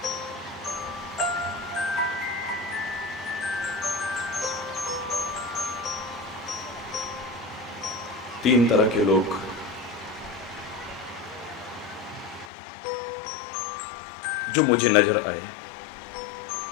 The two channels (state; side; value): drops out; right; at 12.5 s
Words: तीन तरह के लोग जो मुझे नजर आए।